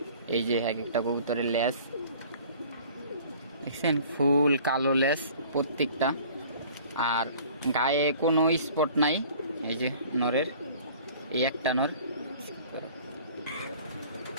এই যে এক একটা কবুতরের লেজ দেখছেন, ফুল কালো লেজ প্রত্যেকটা, আর গায়ে কোনো স্পট নাই। এই যে নরের এই একটা নর।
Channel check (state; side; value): inverted; both; correlation -0.49